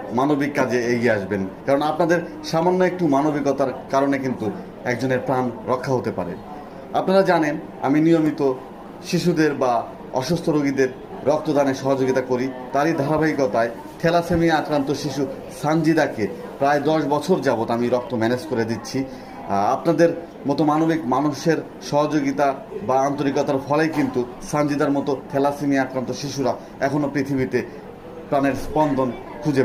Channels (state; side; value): identical; both; correlation 1.00